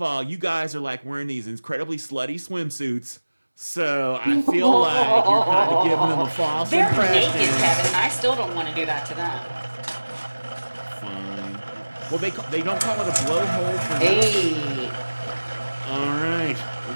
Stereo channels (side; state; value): both; inverted; correlation -1.00